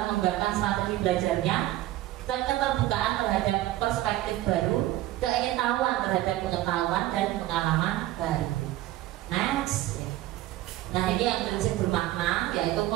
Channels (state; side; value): quieter; left; 15.5 dB